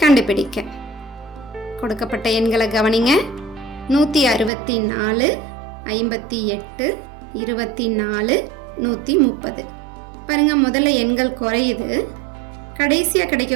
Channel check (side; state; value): left; drops out; at 4.5 s